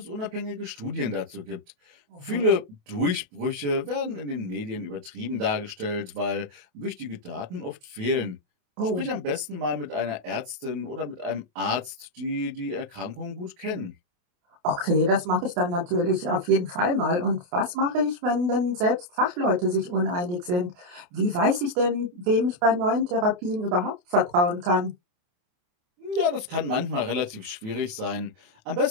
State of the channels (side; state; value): left; late; 28 ms